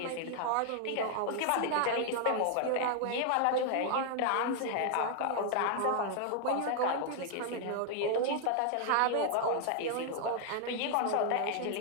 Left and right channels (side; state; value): both; different; correlation 0.00